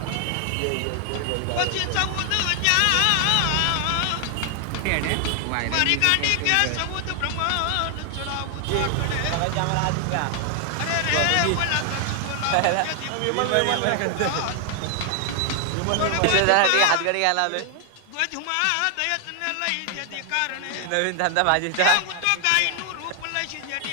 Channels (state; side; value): different; both; correlation 0.00